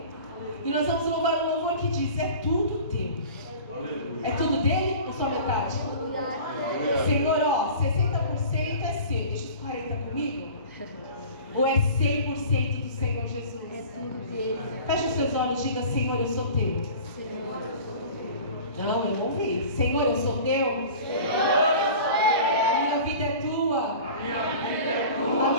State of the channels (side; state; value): both; inverted; correlation -0.41